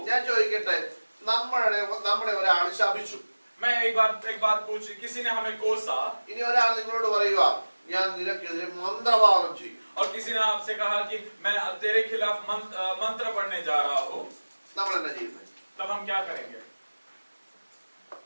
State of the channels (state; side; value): inverted; both; correlation -1.00